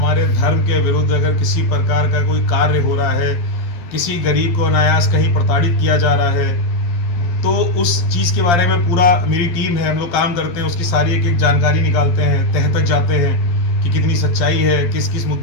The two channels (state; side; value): late; right; 11 ms